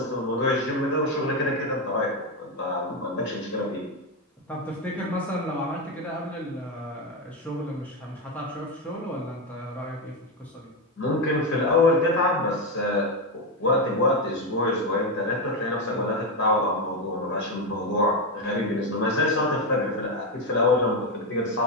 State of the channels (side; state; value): both; normal; correlation 0.09